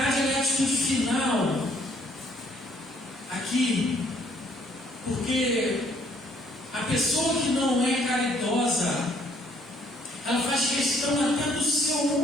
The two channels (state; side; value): normal; both; correlation 0.64